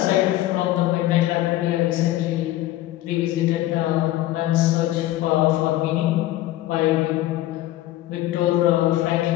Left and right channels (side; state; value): right; quieter; 15.1 dB